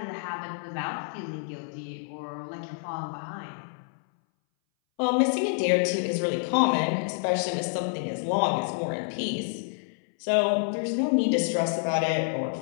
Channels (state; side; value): silent; right; 59 dB below the other